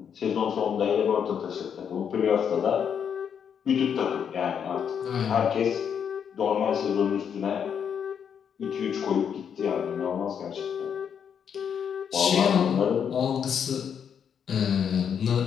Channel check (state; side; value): quieter; right; 7.8 dB